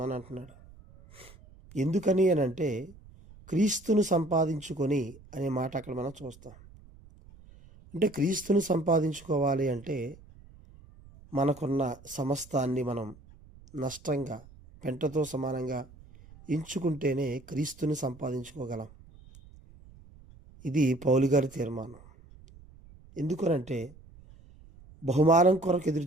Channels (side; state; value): right; noise; rumble, 22 dB below the sound